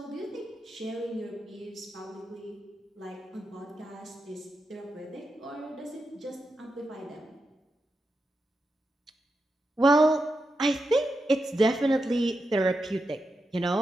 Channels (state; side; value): normal; both; correlation 0.87